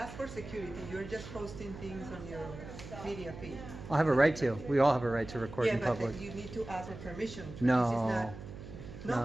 for security. You're just posting things on your media feed. I'll have a right to. We all have a right to record in but public. you need to ask for permission. No. This is not,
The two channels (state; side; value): noise; right; hum, 13 dB below the sound